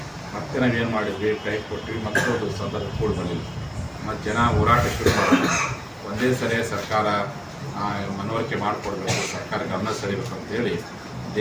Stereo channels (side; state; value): both; identical; correlation 1.00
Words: ಮತ್ತೆ ನಾವೇನು ಮಾಡಿದ್ವಿ, ಟೈಮ್ ಕೊಟ್ಟಿವಿ. ಮತ್ತೊಂದು ಸಂದರ್ಭ ಕೂಡ ಬಂದಿಲ್ಲ. ಮತ್ತು ಜನ ಹೋರಾಟ ಶುರು ಮಾಡಿದ್ವಿ. ಒಂದೇ ಸರಿ ಸರ್ಕಾರ ಮನವರಿಕೆ ಮಾಡಿಕೊಡ್ಬೇಕು, ಸರ್ಕಾರ ಗಮನ ಸೆಳೆಯಬೇಕು ಅಂತೇಳಿ